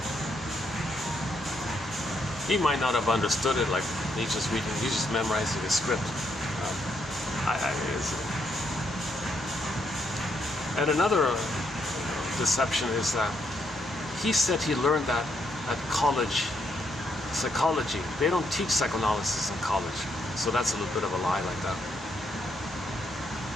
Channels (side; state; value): both; normal; correlation 0.76